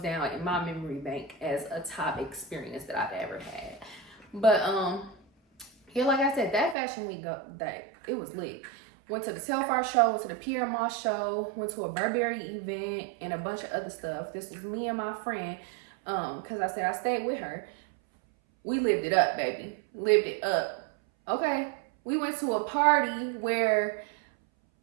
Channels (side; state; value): left; drops out; at 6.8 s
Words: in my memory bank as a top experience that I've ever had. But yeah, like I said, that Fashion Week it was lit. Went to the Telfar show, went to the Pierre Moss show, went to a Burberry event, and a bunch of other stuff. This was me and my friend, because I said I stayed with her. We lived it up, baby. Lived it up. Okay? We went to a party where